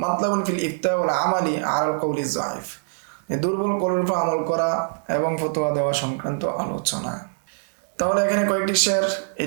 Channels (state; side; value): silent; left; digital silence